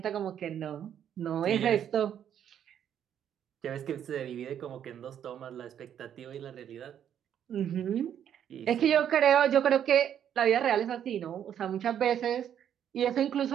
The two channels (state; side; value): quieter; left; 9.5 dB